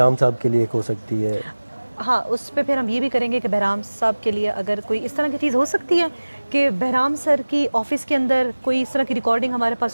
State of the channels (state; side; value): inverted; both; correlation -1.00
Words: साहब के लिए एक हो सकती है। हाँ, उस पे फिर हम ये भी करेंगे कि बहराम साहब के लिए अगर कोई इस तरह की चीज़ हो सकती है कि बहराम सर की ऑफिस के अंदर कोई इस तरह की रिकॉर्डिंग हमारे पास